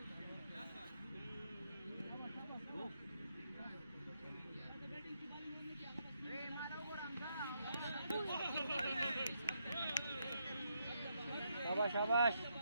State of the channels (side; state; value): both; inverted; correlation -0.79